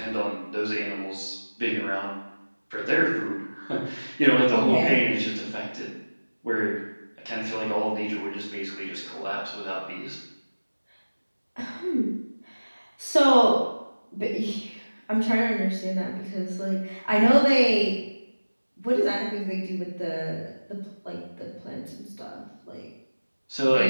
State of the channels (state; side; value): inverted; both; correlation -1.00